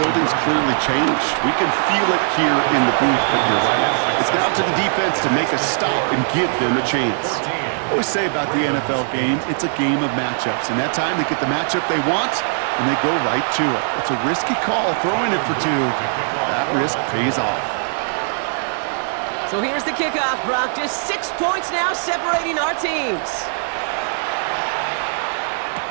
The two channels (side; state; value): left; silent; digital silence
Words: clearly changed. We can feel it here in the booth, but you're right. It's now to the defense to make a stop and give them a chance. I always say about the NFL game, it's a game of matchups. And that time they get the matchup they want, and they go right to it. It's a risky call throwing it for 2. That risk pays off. So here's the kickoff, Brock. Just 6 points now separating our teams.